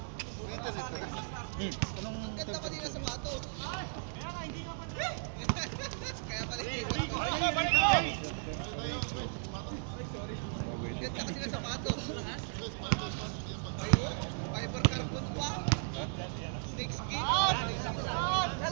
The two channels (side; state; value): left; silent; 54 dB below the other